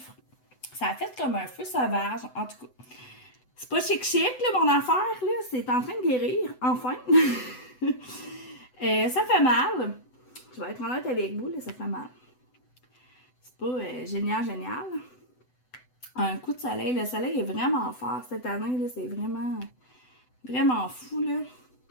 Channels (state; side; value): late; right; 8.0 ms